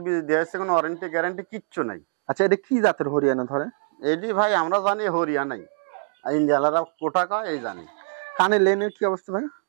বীজ দিয়েছে, কোনো ওয়ারেন্টি গ্যারান্টি কিচ্ছু নাই। আচ্ছা, এটা কি জাতের হরিয়ানা ধরে? এটি ভাই আমরা জানি হরিয়ানাই, ইন্ডিয়ালারা কোটা কয় এই জানি। কানের লেনের কি অবস্থা ভাই?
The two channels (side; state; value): left; silent; digital silence